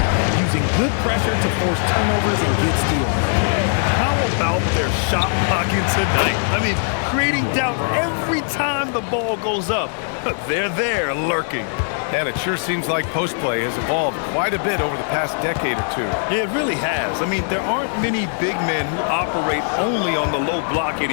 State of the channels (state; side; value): silent; right; digital silence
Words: using good pressure to force turnovers and get steals. And how about their shot blocking tonight? I mean, creating doubt every time the ball goes up. They're there lurking. And it sure seems like post play has evolved quite a bit over the past decade or two. It really has. I mean, there aren't many big men who operate only on the low block